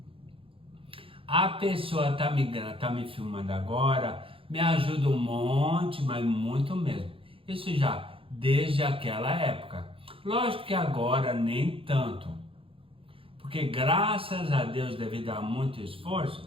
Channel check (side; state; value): left; late; 0.26 ms